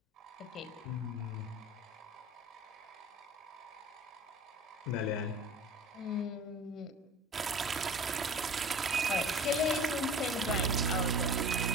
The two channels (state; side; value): normal; both; correlation 0.40